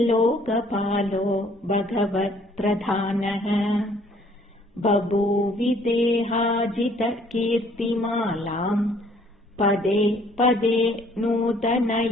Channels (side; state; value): both; normal; correlation 0.60